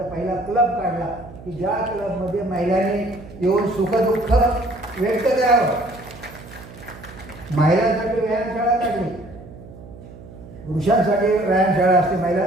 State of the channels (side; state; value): right; noise; hum, 17 dB below the sound